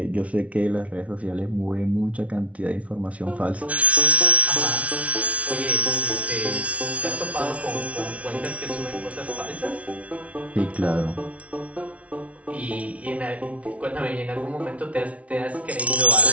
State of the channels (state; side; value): late; left; 0.065 ms